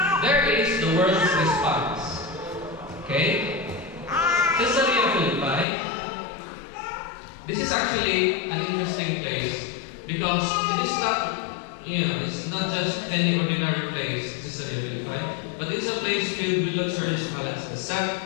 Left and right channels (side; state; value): right; drops out; at 5.7 s